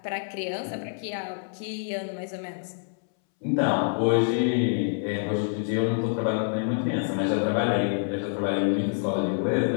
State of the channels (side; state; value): right; silent; 60 dB below the other